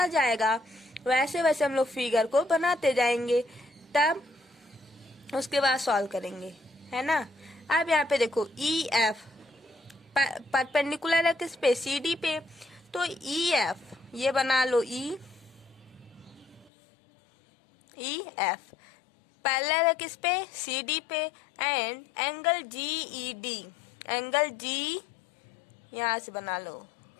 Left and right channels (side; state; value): right; drops out; at 16.7 s